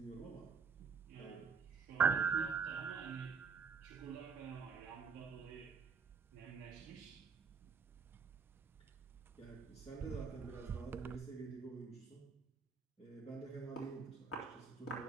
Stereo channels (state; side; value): quieter; left; 5.6 dB